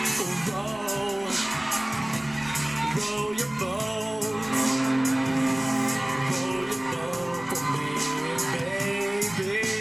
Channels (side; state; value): left; noise; rumble, 25 dB below the sound